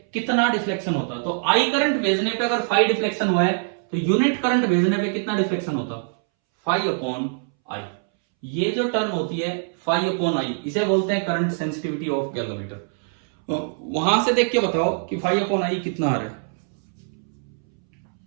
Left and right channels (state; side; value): silent; left; 63 dB below the other